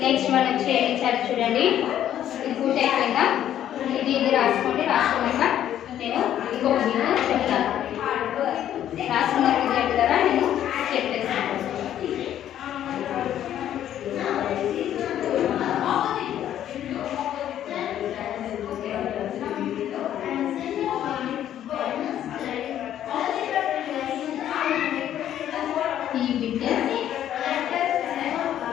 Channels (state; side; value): quieter; right; 11.1 dB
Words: నెక్స్ట్ మనం ఇచ్చారు చూడండి, ఇది పూర్తి అయిపోయిందా. ఇది రాసుకోండి. రాసుకున్నాక నేను ఇంకొక వీడియో చెప్తాను. రాసుకున్న విద్యార్థులారా నేను చెప్పేస్తాను. ఈ బిడ్డ